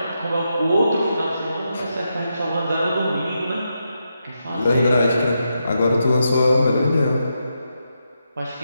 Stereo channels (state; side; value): inverted; both; correlation -0.84